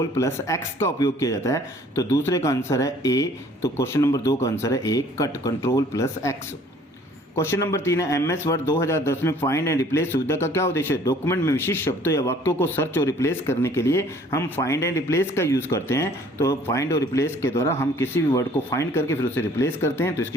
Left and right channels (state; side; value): normal; both; correlation 0.55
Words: का उपयोग किया जाता है। तो दूसरे का आंसर है A, तो क्वेश्चन नंबर 2 का आंसर है A, cut, Ctrl+X। Question number 3 है, MS वर्ड 2010 में फाइंड एंड रिप्लेस सुविधा का क्या उद्देश्य है? डॉक्यूमेंट में विशिष्ट शब्दों या वाक्यों को सर्च और रिप्लेस करने के लिए हम फाइंड एंड रिप्लेस का यूज करते हैं। तो फाइंड और रिप्लेस के द्वारा हम किसी भी वर्ड को फाइंड करके फिर उसे रिप्लेस करते हैं। तो